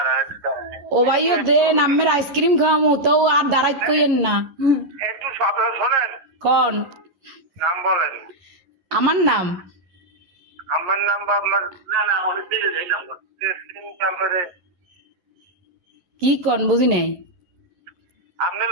ও ভাইও দেন, আম্মের আইসক্রিম খাওয়ামো তো আর দাঁড়াইত কইেন না। একটু শোনেন। কন নাম বলেন। আমার নাম? আমার নাম বা আপনার? না অনেক দিলে এই নাম্বার নাম্বারে। কি কন বুঝি নাই। আপনার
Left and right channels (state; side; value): late; left; 11 ms